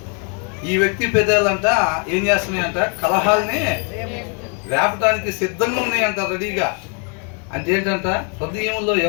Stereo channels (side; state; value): right; quieter; 38.7 dB